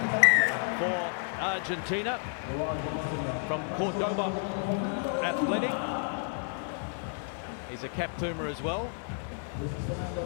for Argentina from Cordoba Athletic. He's a cap Puma as well.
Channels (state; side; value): silent; right; 57 dB below the other